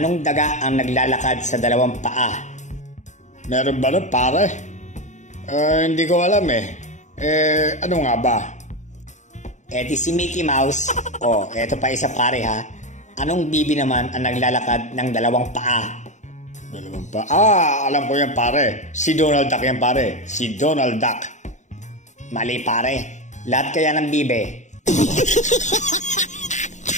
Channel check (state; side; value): late; right; 0.35 ms